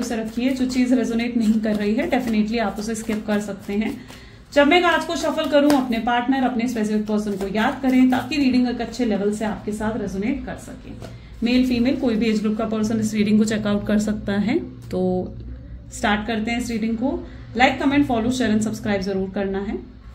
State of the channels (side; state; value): both; identical; correlation 1.00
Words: रखिए, जो चीज रेजोनेट नहीं कर रही है डेफिनेटली आप उसे स्किप कर सकते हैं। जब मैं आज को शफल करूं, अपने पार्टनर, अपने स्पेसिफिक पर्सन को याद करें ताकि रीडिंग एक अच्छे लेवल से आपके साथ रेजोनेट कर सके। मेल फीमेल कोई भी एज ग्रुप का पर्सन इस रीडिंग को चेकआउट कर सकता है। तो स्टार्ट करते हैं इस रीडिंग को। Like, comment, follow, share and subscribe जरूर करना है,